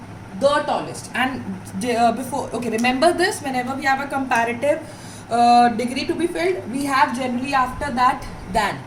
The tallest. And remember this, whenever we have a comparative degree to be filled, we have generally after that than.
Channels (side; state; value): both; identical; correlation 1.00